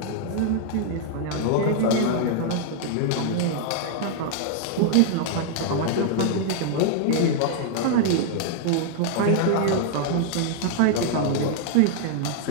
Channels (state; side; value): different; both; correlation -0.01